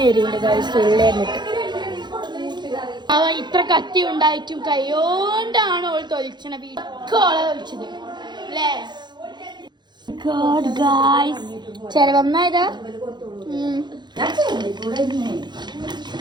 ഉള്ളേറിട്ട്. അവ ഇത്ര കത്തി ഉണ്ടായിട്ടും കൈയോണ്ടാണ് ഓൾ തൊലിച്ചണ വീട്ടോളെ തൊലിച്ചത് അല്ലേ? ചെലവന്നായതാ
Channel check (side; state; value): left; late; 0.21 ms